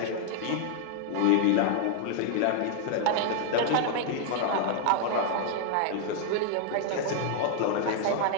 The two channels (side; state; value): both; different; correlation 0.00